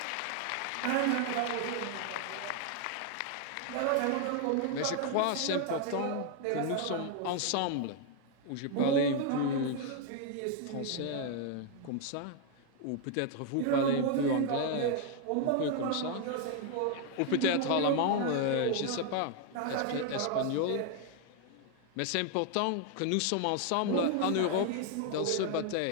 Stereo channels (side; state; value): both; different; correlation 0.00